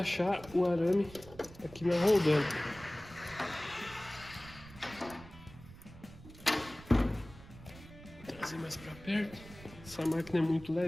o arame aqui na roldana. Vou trazer mais para perto. Essa máquina é muito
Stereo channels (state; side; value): noise; right; rumble, 18 dB below the sound